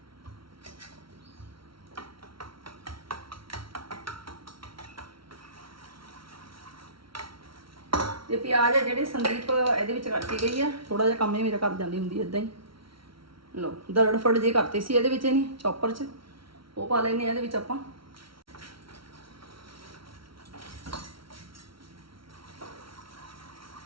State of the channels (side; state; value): left; late; 0.74 ms